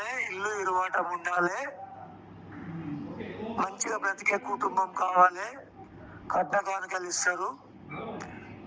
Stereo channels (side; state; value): both; identical; correlation 1.00